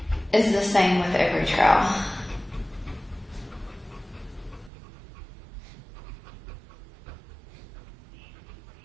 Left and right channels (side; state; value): left; drops out; at 4.7 s